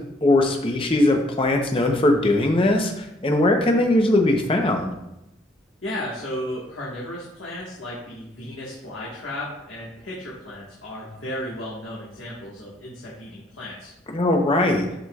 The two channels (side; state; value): both; normal; correlation 0.66